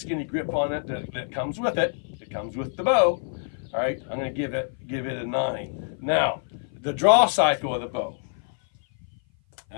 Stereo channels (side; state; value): right; silent; 56 dB below the other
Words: grip on it that comes with it, it comes with the bow. All right, I'm going to give it a 9. Now, the draw cycle of the bow. All